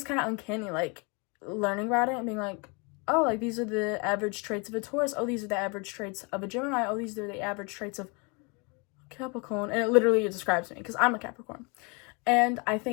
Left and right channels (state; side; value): quieter; right; 31.1 dB